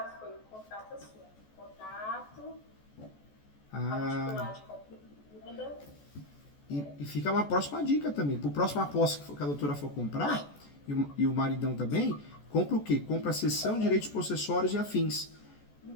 foi um contrato assim, contrato particular de compra e venda. E fica uma próxima dica também. Para a próxima posse que a doutora for comprar, e o maridão também, compra o quê? Compra a cessão, direitos possessórios e afins.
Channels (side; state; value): right; late; 14 ms